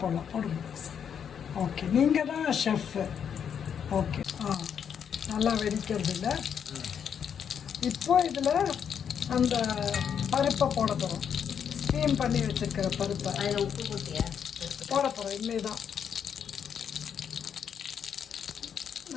ஓகே, நீங்கள் தான் ஷெஃப். ஓகே, நல்லா வெடிக்கிறது இல்லை. இப்போ இதில் அந்த பருப்பை போட போகிறோம். ஸ்டீம் பண்ணி வச்சுருக்கிற பருப்பை உப்பு போட்டியா போட போகிறோம். இனிமே தான்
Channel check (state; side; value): quieter; right; 7.9 dB